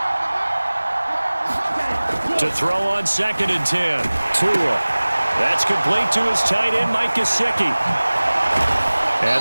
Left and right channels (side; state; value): both; inverted; correlation -1.00